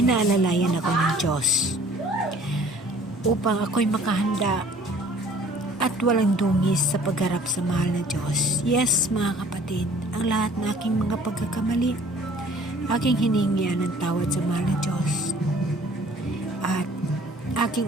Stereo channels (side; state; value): both; normal; correlation 0.53